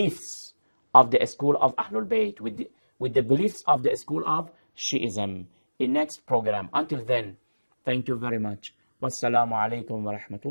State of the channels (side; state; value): both; inverted; correlation -1.00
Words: of the school of Ahlul Bayt, with the beliefs of the school of Shi'ism in next program. Until then, thank you very much. Wassalamu alaikum wa